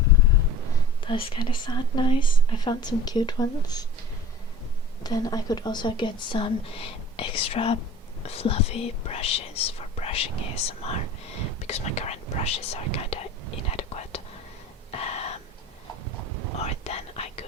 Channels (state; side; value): normal; both; correlation 0.40